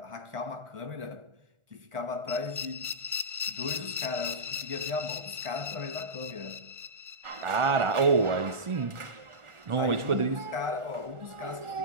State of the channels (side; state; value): left; late; 1.4 ms